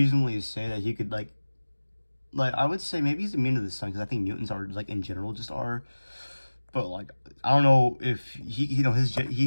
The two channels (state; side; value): inverted; both; correlation -1.00